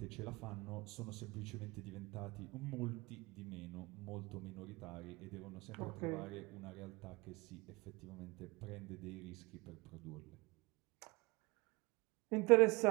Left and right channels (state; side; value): quieter; left; 24.5 dB